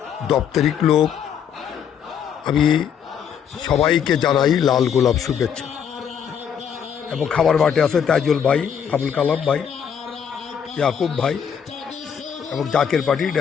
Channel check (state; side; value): quieter; right; 8.0 dB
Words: দপ্তরিক লোক, আমি সবাইকে জানাই লাল গোলাপ শুভেচ্ছা। এবং খাবার মাঠে আছে তাইজুল ভাই, আবুল কালাম ভাই, ইয়াকুব ভাই এবং জাকের পার্টির